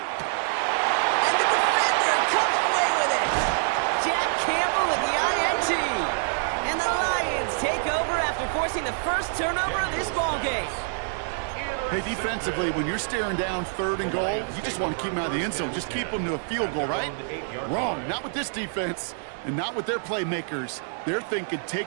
And the defender comes away with it. Jack Campbell with the INT. And the Lions take over after forcing the first turnover of this ballgame. Hey, defensively, when you're staring down 3rd and goal, you just want to keep them out of the end zone. Just keep them to a field goal, right? Wrong. Not with this defense and not with their playmakers. They're thinking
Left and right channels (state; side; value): silent; left; digital silence